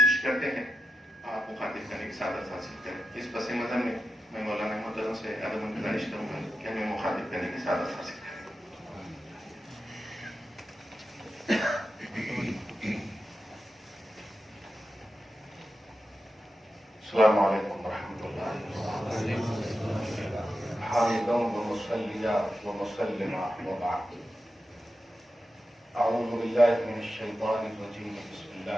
کرتے ہیں، آپ مخاطب کرنے کی سعادت حاصل کریں۔ اس پس منظر میں مولانا محترم سے ادب گزارش کروں گا کہ ہمیں مخاطب کرنے کی سعادت حاصل کریں۔ السلام علیکم ورحمۃ اللہ، حامداً ومصلیاً ومسلما وبعد۔ اعوذ باللہ من الشیطان الرجیم، بسم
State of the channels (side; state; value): both; normal; correlation 0.90